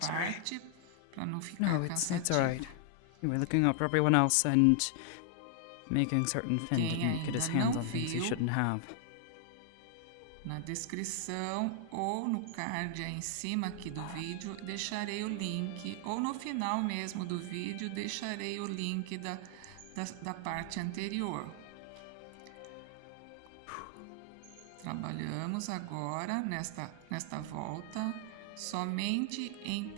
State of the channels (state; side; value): different; both; correlation 0.00